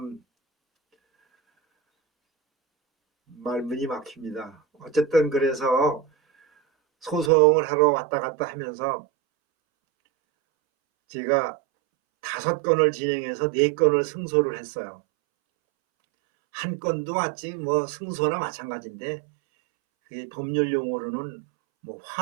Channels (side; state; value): left; drops out; at 7.3 s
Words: 말문이 막힙니다. 어쨌든 그래서 소송을 하러 왔다 갔다 하면서 제가 5건을 진행해서 4건을 승소를 했어요. 한 건도 마치 승소나 마찬가지인데 그게 법률 용어로는